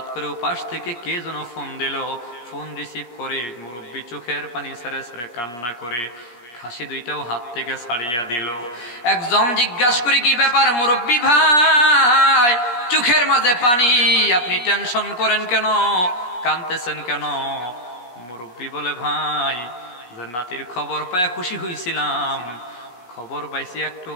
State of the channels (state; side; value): late; right; 17 ms